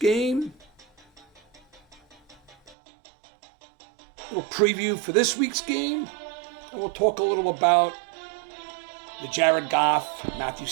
Little preview for this week's game. And we'll talk a little about the Jared Goff, Matt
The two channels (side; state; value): left; drops out; at 2.8 s